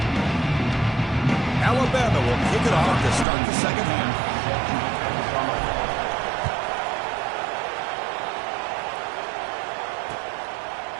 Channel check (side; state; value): left; drops out; at 3.2 s